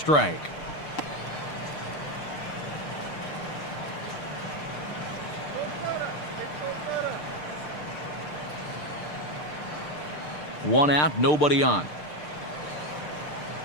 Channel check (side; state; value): right; late; 6.7 ms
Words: One out, nobody on.